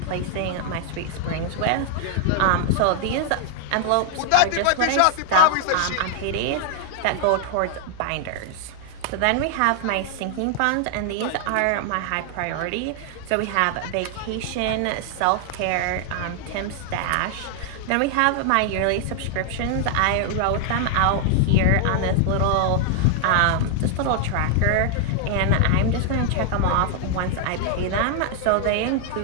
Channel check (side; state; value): both; different; correlation 0.00